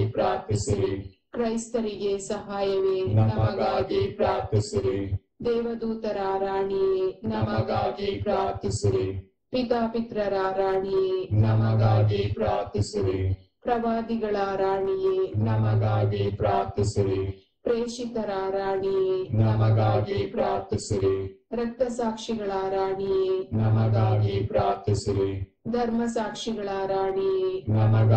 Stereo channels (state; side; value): identical; both; correlation 1.00